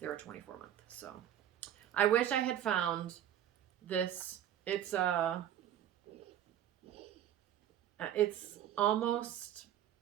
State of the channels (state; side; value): quieter; left; 10.9 dB